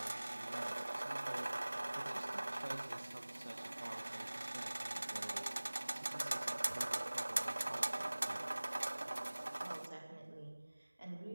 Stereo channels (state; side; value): inverted; both; correlation -1.00